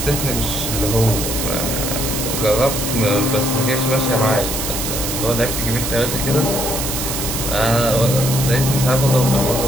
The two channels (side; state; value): right; noise; hiss, 3 dB below the sound